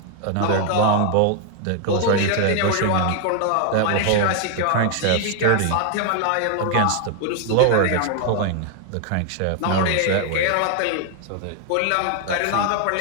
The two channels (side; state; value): both; different; correlation 0.00